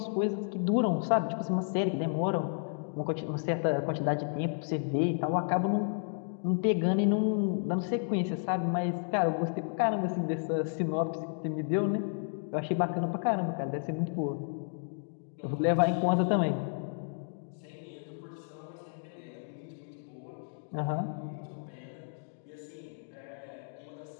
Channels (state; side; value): silent; right; digital silence